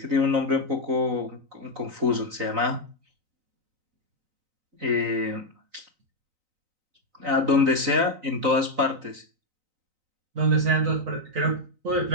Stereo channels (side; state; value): left; late; 3.9 ms